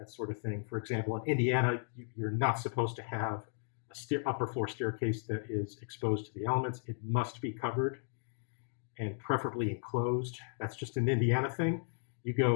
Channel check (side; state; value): right; silent; digital silence